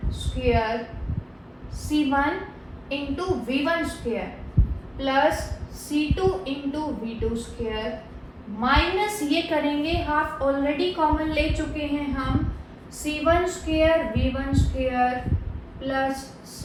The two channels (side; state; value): both; identical; correlation 1.00